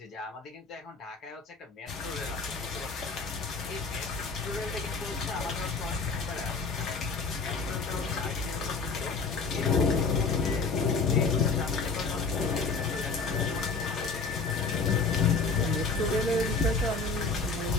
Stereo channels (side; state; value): right; quieter; 4.4 dB